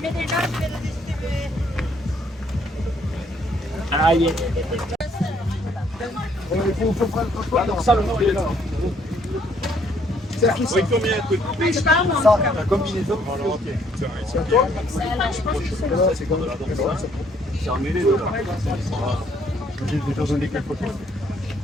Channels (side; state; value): both; normal; correlation 0.66